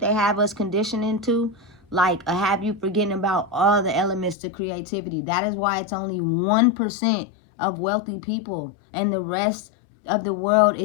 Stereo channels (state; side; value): drops out; right; at 4.4 s